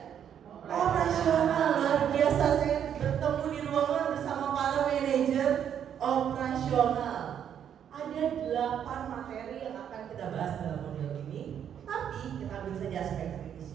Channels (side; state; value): left; quieter; 9.0 dB